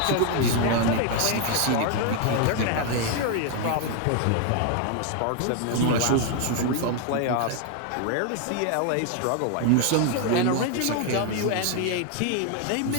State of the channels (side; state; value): both; different; correlation 0.00